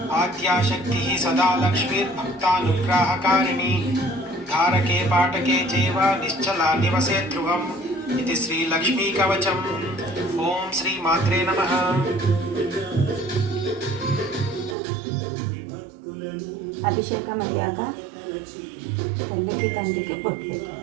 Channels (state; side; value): drops out; left; at 14.8 s